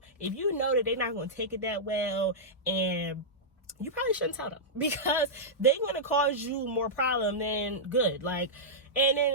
if you know that they're not gonna take it that well, and you probably shouldn't tell them, because they're gonna cause you more problem than good. Like, and then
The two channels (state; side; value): normal; both; correlation -0.11